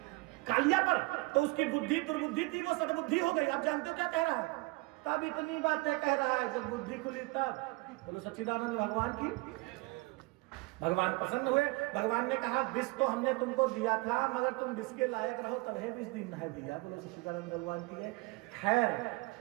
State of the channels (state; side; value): quieter; left; 24.9 dB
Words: कालिया पर। तो उसकी बुद्धि दुर्बुद्धि थी, वो सद्बुद्धि हो गई। आप जानते हो क्या कह रहा है? तब इतनी बातें कह रहा है, जब बुद्धि खुली तब। बोलो सच्चिदानंद भगवान की। भगवान प्रसन्न हुए। भगवान ने कहा विष तो हमने तुमको दिया था, मगर तुम विष के लायक रहो तभी विष दिन है दिया। बोलो सच्चिदानंद भगवान की है। खैर